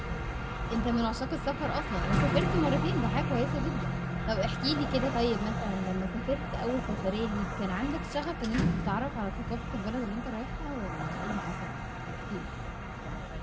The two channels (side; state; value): both; identical; correlation 1.00